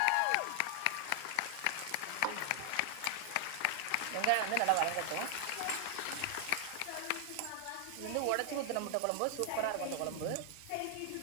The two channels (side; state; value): both; different; correlation 0.00